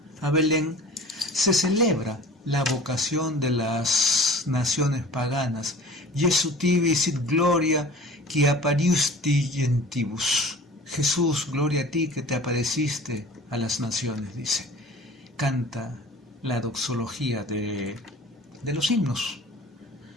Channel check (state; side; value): normal; both; correlation 0.43